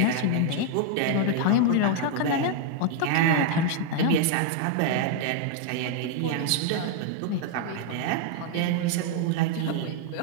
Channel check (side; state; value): both; different; correlation 0.00